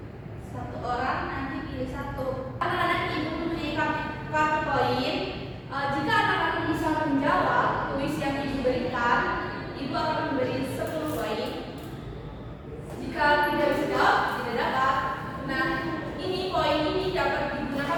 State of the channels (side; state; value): both; identical; correlation 1.00